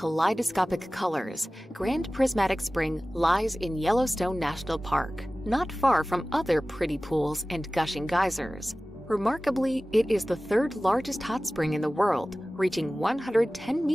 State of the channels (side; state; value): both; normal; correlation 0.97